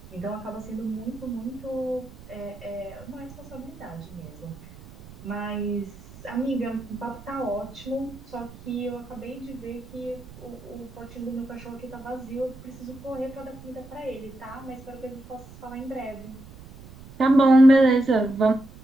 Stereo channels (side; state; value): right; noise; rumble, 18 dB below the sound